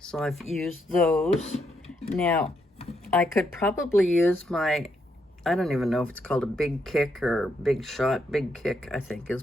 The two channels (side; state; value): both; normal; correlation 0.78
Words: I've used those. Now, I could probably use my, I don't even know if it's called a Big Kick or Big Shot. Big Kick, I think,